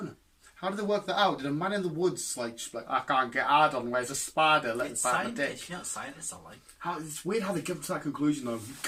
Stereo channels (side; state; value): both; identical; correlation 1.00